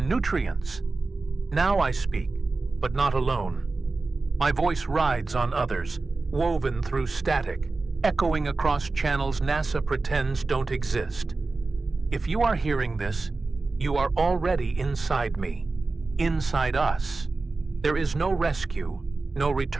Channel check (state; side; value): quieter; left; 3.6 dB